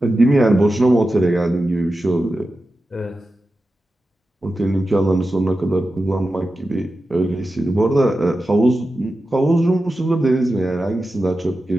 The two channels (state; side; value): normal; both; correlation 0.92